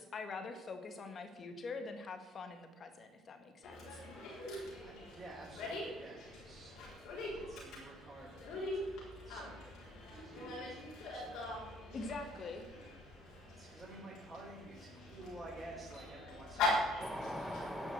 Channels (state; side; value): normal; both; correlation 0.60